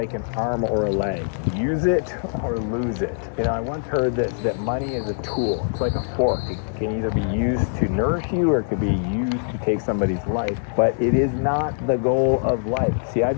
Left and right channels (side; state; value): right; silent; digital silence